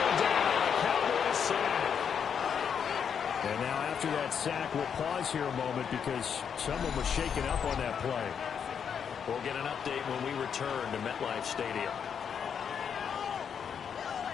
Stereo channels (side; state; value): right; quieter; 7.4 dB